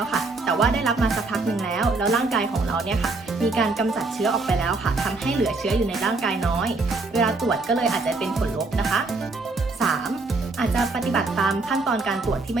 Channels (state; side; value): quieter; left; 3.5 dB